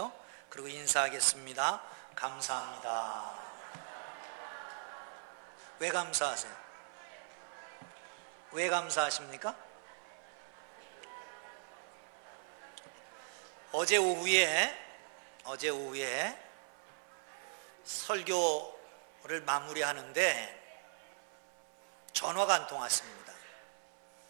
그리고 인사하겠습니다. 감사합니다. 왜 감사하세요? 왜 감사하십니까? 어제 오후에 설교를 마무리하는데 전화가 한 통 왔습니다.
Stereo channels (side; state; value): left; silent; 51 dB below the other